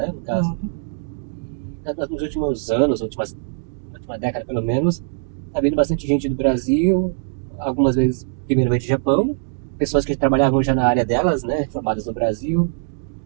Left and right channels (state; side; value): silent; left; digital silence